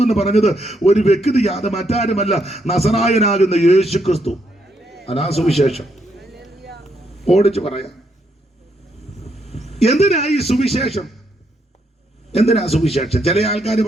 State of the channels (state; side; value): normal; both; correlation 0.76